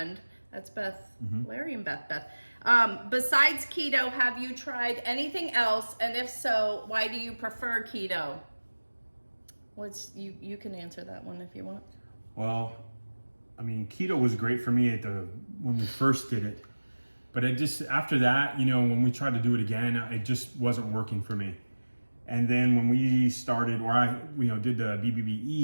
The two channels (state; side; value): inverted; both; correlation -1.00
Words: that's Beth, Larry and Beth. Besides keto, have you tried anything else? And if so, why do you prefer keto? You can answer that one if you want. Well, I mean, keto was great for me when we first did it. But after that, when we tried to do it again, it just wasn't working for me. And then when we started, or I did the